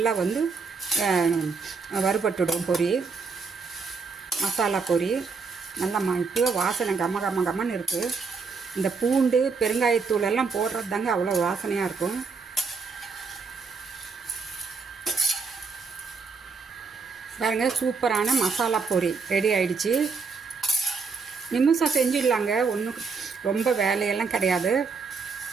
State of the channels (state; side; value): quieter; left; 4.9 dB